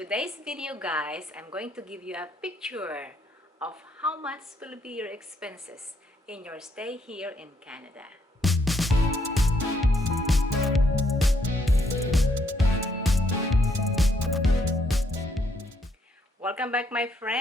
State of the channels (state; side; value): normal; both; correlation 0.73